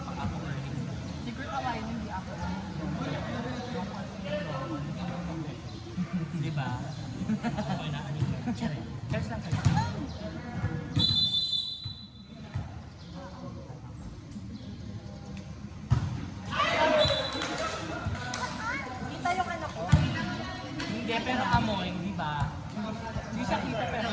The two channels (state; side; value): identical; both; correlation 1.00